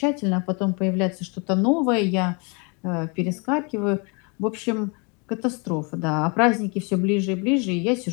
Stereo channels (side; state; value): right; quieter; 32.5 dB